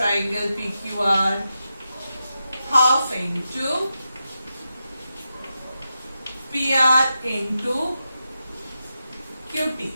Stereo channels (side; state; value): both; inverted; correlation -0.89